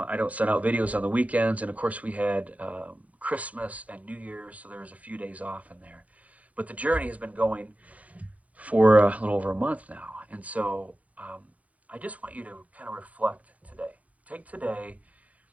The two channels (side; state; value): left; late; 0.068 ms